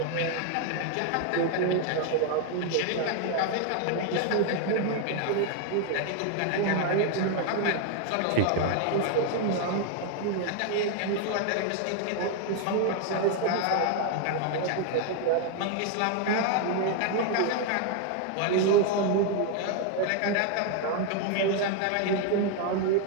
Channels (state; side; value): different; both; correlation 0.01